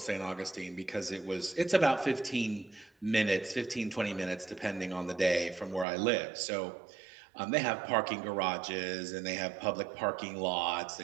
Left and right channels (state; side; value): drops out; left; at 5.9 s